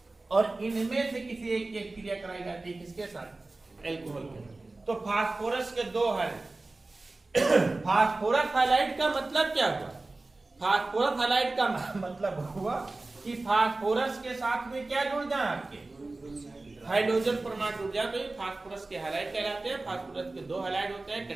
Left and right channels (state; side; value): quieter; left; 3.2 dB